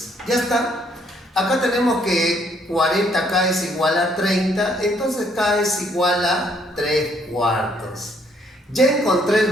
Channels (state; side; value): normal; both; correlation 0.67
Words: Ya está. Acá tenemos que 40K es igual a 30, entonces K es igual a 3/4. Ya encontré el